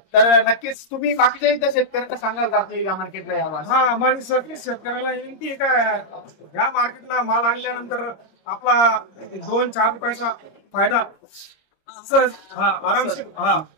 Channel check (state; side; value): late; right; 26 ms